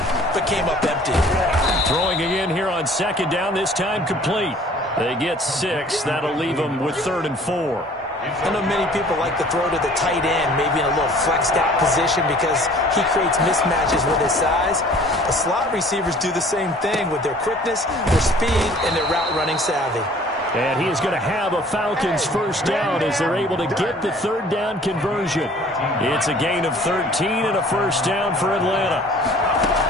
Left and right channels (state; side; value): normal; both; correlation 0.52